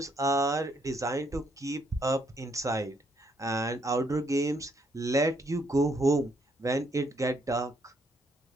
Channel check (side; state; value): both; normal; correlation 0.71